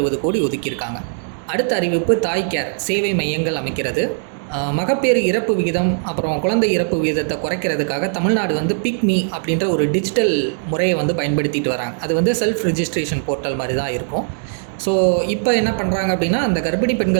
கோடி ஒதுக்கியிருக்காங்க. அடுத்த அறிவிப்பு தாய் கேர் சேவை மையங்கள் அமைக்கிறது. மகப்பேறு இறப்பு விகிதம் அப்புறம் குழந்தை இறப்பு விகிதத்தை குறைக்கிறதுக்காக தமிழ்நாடு பிக்மி அப்படின்ற ஒரு டிஜிட்டல் முறையை பயன்படுத்திட்டு வராங்க. அது செல்ஃப் ரிஜிஸ்ட்ரேஷன் போர்ட்டல் மாதிரி தான் இருக்கும். ஸோ இப்போ என்ன பண்ணுறாங்க அப்படின்னா, அந்த கர்ப்பிணி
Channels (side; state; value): left; silent; digital silence